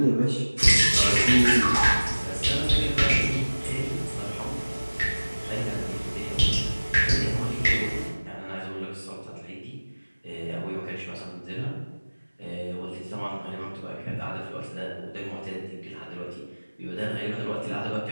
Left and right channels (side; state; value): both; inverted; correlation -1.00